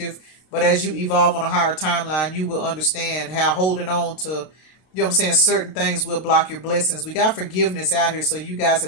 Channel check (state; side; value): late; right; 32 ms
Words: But as you evolve on a higher timeline, you will understand how holding on to, you know what I'm saying, certain things will block your blessings. We got forgiveness out here, so you guys